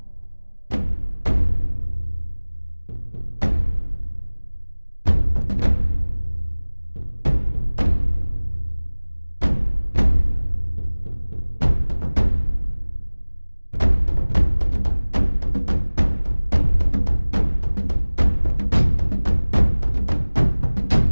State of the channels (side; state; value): both; inverted; correlation -1.00